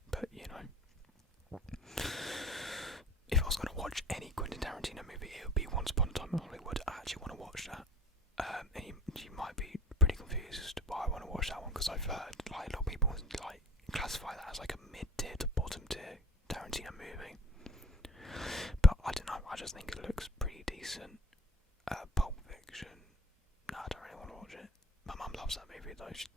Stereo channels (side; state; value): both; normal; correlation 0.42